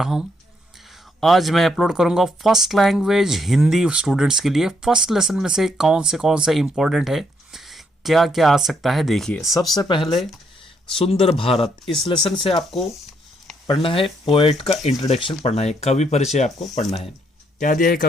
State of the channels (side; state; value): both; normal; correlation 0.74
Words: हूं। आज मैं अपलोड करूंगा फर्स्ट लैंग्वेज हिंदी स्टूडेंट्स के लिए। फर्स्ट लेसन में से कौन से इंपॉर्टेंट है, क्या क्या आ सकता है, देखिए। सबसे पहले सुंदर भारत, इस लेसन से आपको पढ़ना है। पोएट का इंट्रोडक्शन पढ़ना है, कवि परिचय आपको पढ़ना है। क्या दिया है